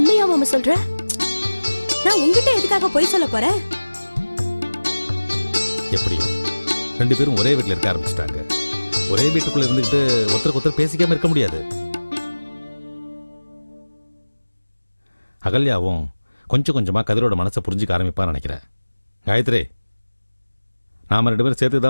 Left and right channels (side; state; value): both; inverted; correlation -1.00